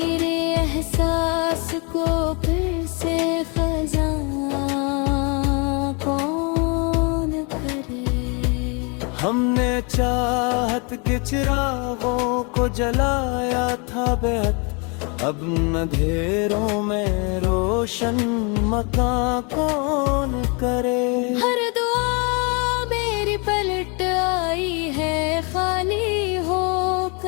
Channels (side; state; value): right; quieter; 32.9 dB